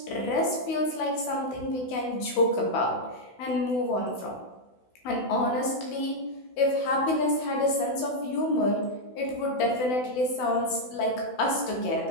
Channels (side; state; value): right; late; 16 ms